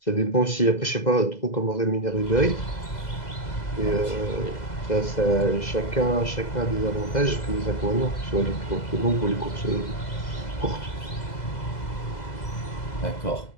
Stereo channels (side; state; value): right; late; 2.0 ms